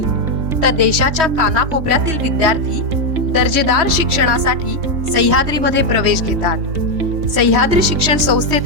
तर देशाच्या कानाकोपऱ्यातील विद्यार्थी दर्जेदार शिक्षणासाठी सह्याद्रीमध्ये प्रवेश घेतात. सह्याद्री शिक्षण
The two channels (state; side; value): late; left; 3.1 ms